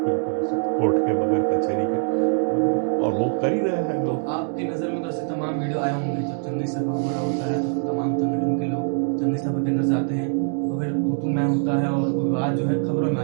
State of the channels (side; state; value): left; silent; 56 dB below the other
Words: के, बगैर कचहरी के, और वो कर ही रहे हैं लोग। आपकी नजर में तो ऐसे तमाम वीडियो आए होंगे, जब चंदी सभा हो रहा होता है तो तमाम संगठन के लोग चंदी सभा के अंदर जाते हैं, तो फिर तू मैं होता है और विवाद जो है खबरों में आ